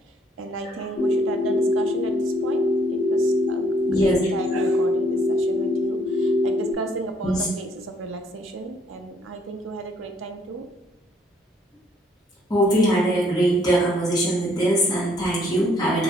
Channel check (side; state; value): both; normal; correlation 0.65